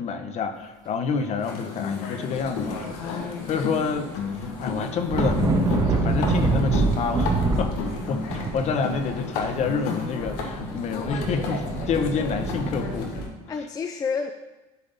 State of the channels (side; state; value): both; normal; correlation 0.51